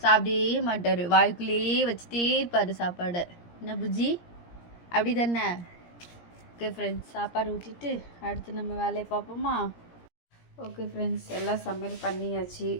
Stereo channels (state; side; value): late; right; 17 ms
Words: சாப்பிடவே மாட்டார். வாய்க்குள்ளேயே வச்சுட்டே இருப்பார் சாப்பாடை. என்ன புஜ்ஜி, அப்படி தானே? ஓகே ஃப்ரெண்ட்ஸ், சாப்பாடு ஊட்டிட்டு அடுத்து நம்ம வேலையை பார்ப்போமா? ஓகே ஃப்ரெண்ட்ஸ், எல்லாம் சமையல் பண்ணியாச்சு.